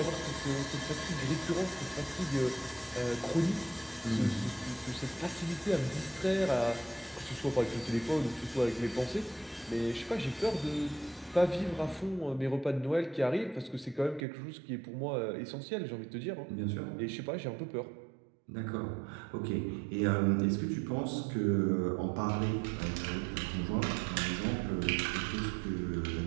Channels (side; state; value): left; drops out; at 14.2 s